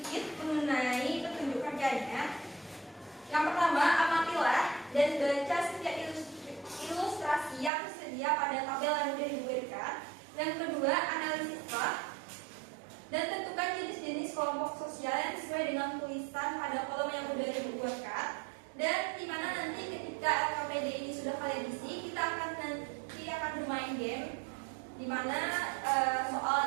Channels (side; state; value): left; drops out; at 7.7 s